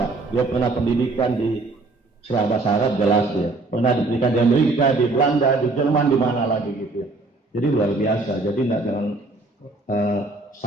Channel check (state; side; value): quieter; left; 3.4 dB